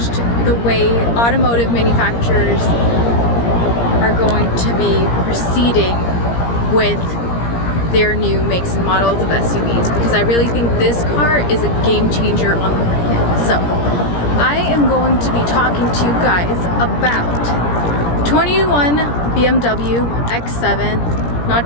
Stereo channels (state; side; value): late; right; 17 ms